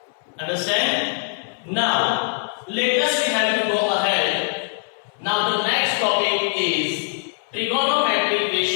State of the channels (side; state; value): right; silent; 64 dB below the other